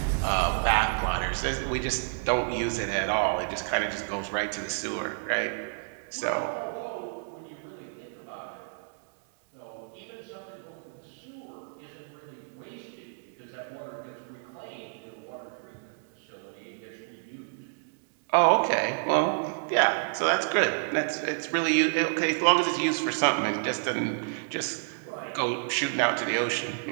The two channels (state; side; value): silent; left; digital silence